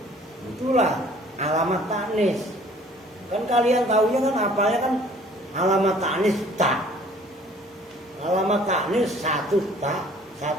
Itulah alamat tanis. Kan kalian tahunya kan apanya kan alamat tanis ta. Alamat tanis satu ta,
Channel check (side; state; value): both; normal; correlation 0.54